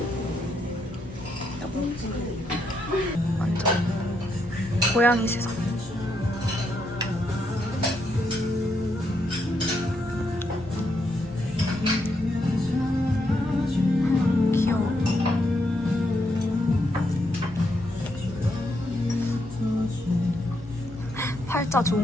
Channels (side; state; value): both; normal; correlation 0.78